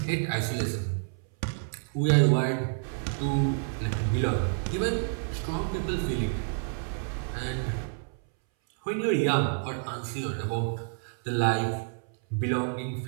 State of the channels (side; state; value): left; silent; 59 dB below the other